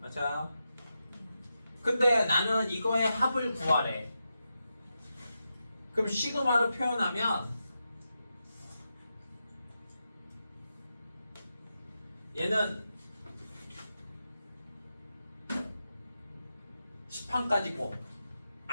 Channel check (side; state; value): both; inverted; correlation -0.88